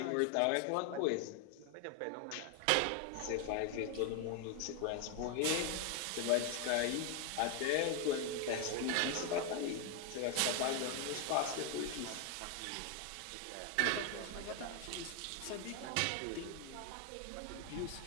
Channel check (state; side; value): different; both; correlation 0.01